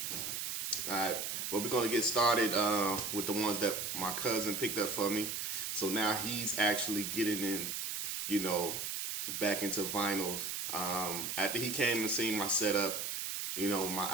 Alright, but we're going to get started with the ones that my cousin picked up for me. So now he's actually getting in, back into vinyls. After he came and seen my setup, my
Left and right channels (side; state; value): right; noise; hiss, 3 dB below the sound